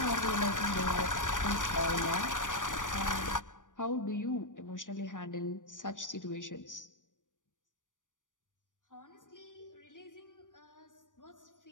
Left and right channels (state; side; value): late; right; 0.87 ms